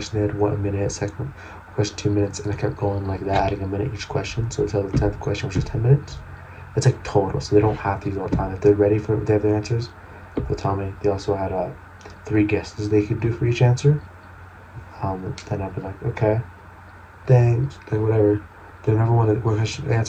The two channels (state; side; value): identical; both; correlation 1.00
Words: they had 1 minute, second question 2 minutes, and I kept going like that, adding a minute each question. So until the 10th question, which was 10 minutes. It's like total, so they don't have to use all the time. If they're ready for, they have their answers, they'll tell me. They also had 3 guesses they could do for each answer. Then I'll be like, okay, thanks, like whatever. They never want to. What